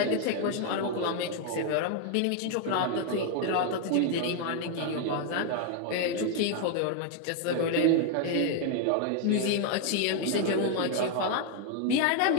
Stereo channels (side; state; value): both; different; correlation 0.00